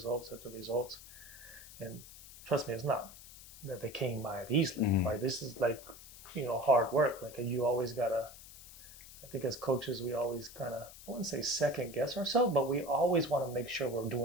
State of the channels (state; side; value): noise; left; hiss, 17 dB below the sound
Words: after results, and trust me, it's not that they came by it easily, right? This is like, you know, hard work. Like you always gotta, I think as coaches, we always kind of, I wouldn't say second guess ourselves, but we always want to make sure we're